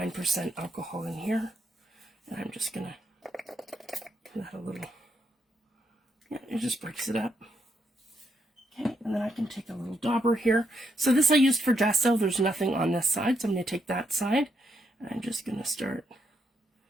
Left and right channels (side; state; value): both; normal; correlation 0.78